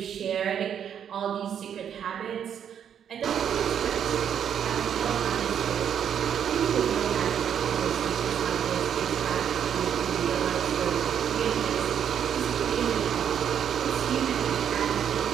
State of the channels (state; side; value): quieter; left; 8.7 dB